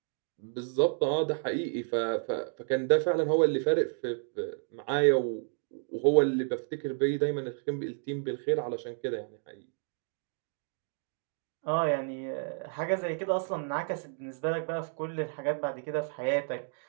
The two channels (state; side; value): silent; left; digital silence